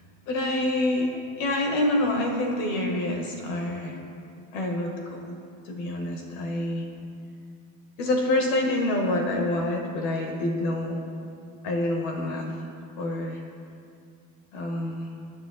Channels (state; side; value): late; right; 12 ms